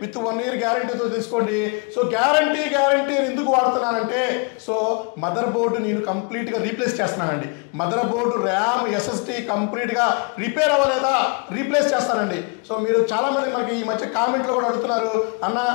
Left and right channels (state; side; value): quieter; right; 35.5 dB